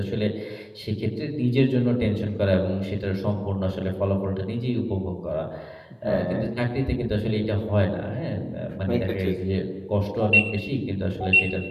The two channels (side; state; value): both; identical; correlation 1.00